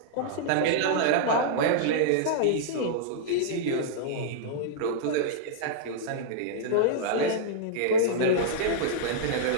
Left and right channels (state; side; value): different; both; correlation -0.02